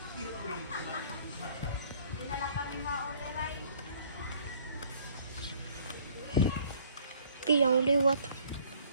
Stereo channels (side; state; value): both; inverted; correlation -0.57